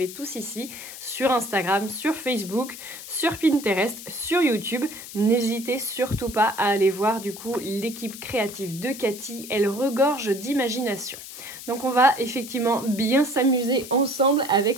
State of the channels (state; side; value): noise; left; hiss, 13 dB below the sound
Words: tous ici. Sur Instagram, sur Facebook, sur Pinterest, sur YouTube. N'hésitez surtout pas à aller voir du coup l'équipe créative de Cathy. Elle regorge d'imagination. Donc, on va effectivement bien s'amuser ensemble